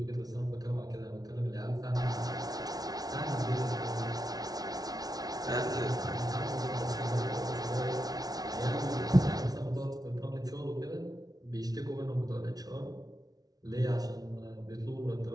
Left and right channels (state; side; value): late; left; 0.19 ms